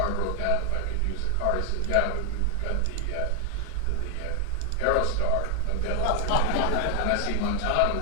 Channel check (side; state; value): both; different; correlation 0.00